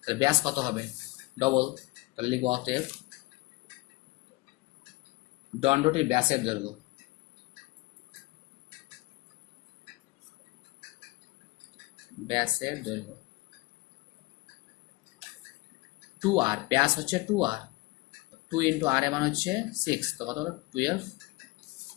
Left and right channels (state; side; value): quieter; right; 21.9 dB